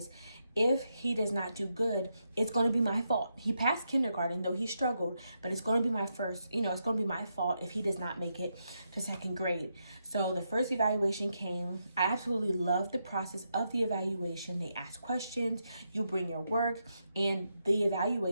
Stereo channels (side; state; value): both; inverted; correlation -0.83